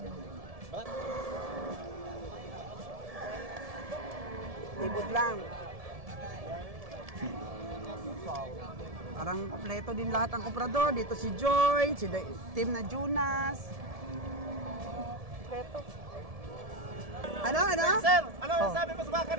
Libot lang. Parang kompleto din lahat ang komprador. Dito si Joy, si team na Jonas. Kompleto. Ano? Sir, ano yung sabi mo sa baka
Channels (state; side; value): late; left; 1.7 ms